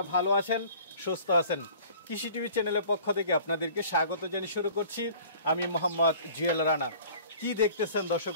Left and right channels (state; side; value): inverted; both; correlation -0.48